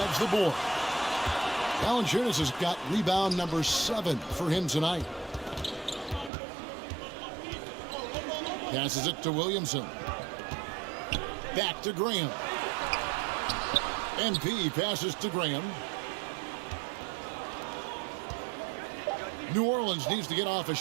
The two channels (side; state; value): left; drops out; at 6.3 s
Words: the board. Valanciunas has got rebound number 7 for him tonight. Passes it to Williamson. Back to Graham. MP passes to Graham. New Orleans needs to get off a